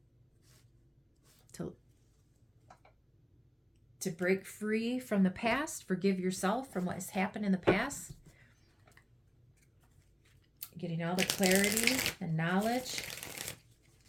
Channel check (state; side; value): identical; both; correlation 1.00